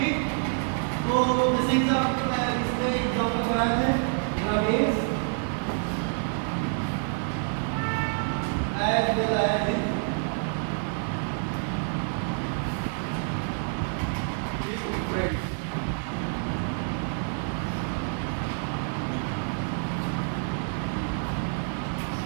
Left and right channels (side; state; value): left; silent; 60 dB below the other